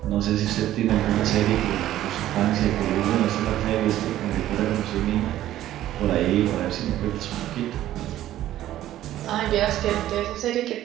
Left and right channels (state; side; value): quieter; left; 13.4 dB